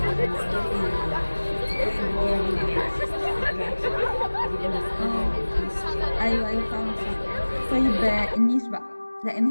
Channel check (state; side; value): inverted; both; correlation -1.00